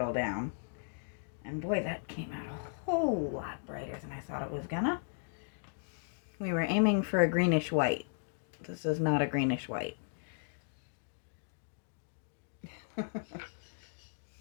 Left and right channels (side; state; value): right; silent; digital silence